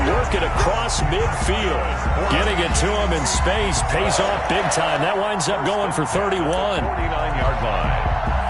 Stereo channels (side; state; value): both; identical; correlation 1.00